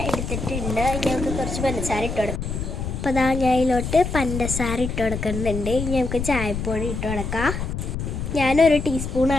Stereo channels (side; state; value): left; noise; rumble, 4 dB below the sound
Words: എടുത്തിട്ടുണ്ട്. ഇനി നമുക്ക് കുറച്ച് പഞ്ചസാര ഇട്ട് കൊടുക്കാം. അപ്പോൾ അതാ ഞാൻ ഇതിലോട്ട് പഞ്ചസാര ഇട്ട് കൊടുക്കുന്നുണ്ട്. ഇനി നമുക്ക് ചായപ്പൊടി ഇട്ട് കൊടുക്കാം. ഞാനൊരു